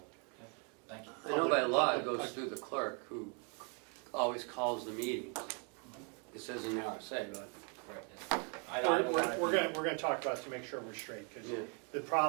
Thank you. I know by law it goes through the clerk, who always calls the meetings. It says in the RSA, but. We're going to talk about it to make sure we're straight, because Yeah. the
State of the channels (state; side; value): quieter; left; 37.1 dB